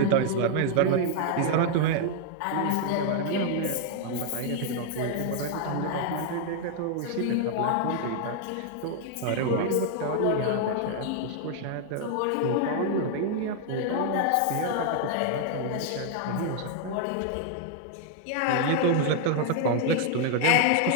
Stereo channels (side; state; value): both; different; correlation 0.00